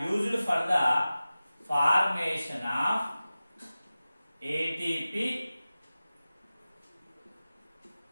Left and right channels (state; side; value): inverted; both; correlation -0.96